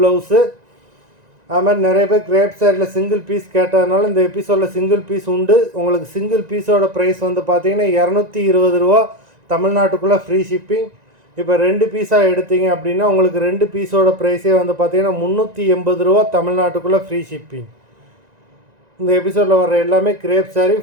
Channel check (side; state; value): left; late; 1.9 ms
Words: அது மாதிரி நிறைய பேர் கிரேப் சாரியில் சிங்கிள் பீஸ் கேட்டதுனால இந்த எபிசோடில் சிங்கிள் பீஸ் உண்டு. உங்களுக்கு சிங்கிள் பீஸோட ப்ரைஸ் வந்து பார்த்தீங்கன்னா 220 ரூபா, தமிழ்நாட்டுக்குள்ளே ஃப்ரீ ஷிப்பிங். இப்போ 2 பீஸாக எடுத்தீங்க அப்படின்னா உங்களுக்கு 2 பீஸோட ப்ரைஸே வந்து பார்த்தீங்கன்னா 380 ரூபா, தமிழ்நாட்டுக்குள்ளே ஃப்ரீ ஷிப்பிங். இந்த எபிசோடில் வர எல்லாமே crepe sari,